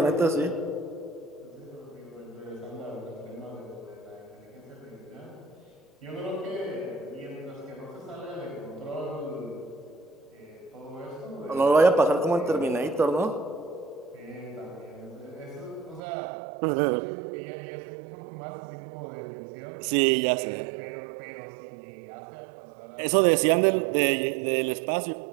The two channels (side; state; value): left; drops out; at 16.0 s